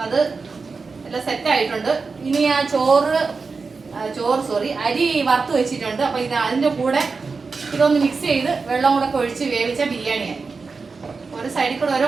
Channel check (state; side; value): quieter; left; 4.5 dB